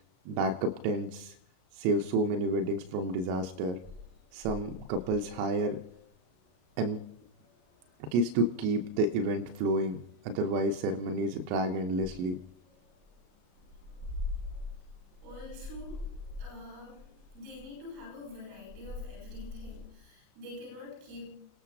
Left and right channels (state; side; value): late; left; 33 ms